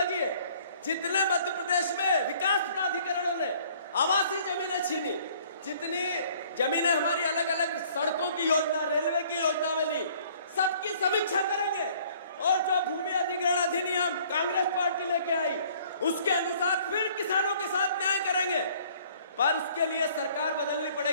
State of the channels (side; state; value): both; inverted; correlation -0.57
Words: है। जितने मध्य प्रदेश में विकास प्राधिकरणों ने आवासीय जमीनें छीनी, जितनी जमीनें हमारी अलग अलग सड़कों की योजना, रेलवे की योजना में ली, सबकी समीक्षा करेंगे और जो भूमि अधिग्रहण अधिनियम कांग्रेस पार्टी लेके आई उसके अनुसार फिर किसानों के साथ न्याय करेंगे। पर उसके लिए सरकार बदलनी